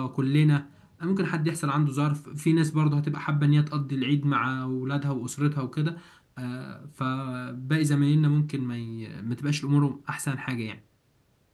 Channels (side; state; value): both; identical; correlation 1.00